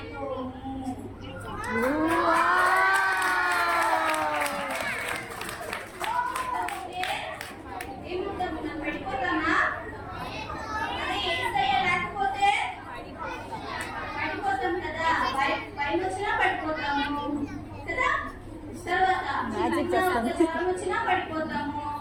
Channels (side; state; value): both; identical; correlation 1.00